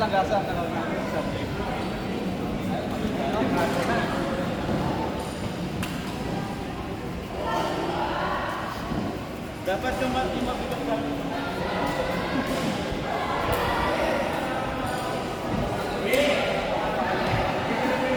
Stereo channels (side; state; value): both; identical; correlation 1.00